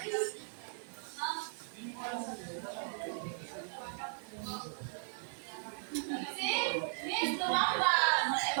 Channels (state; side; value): silent; left; digital silence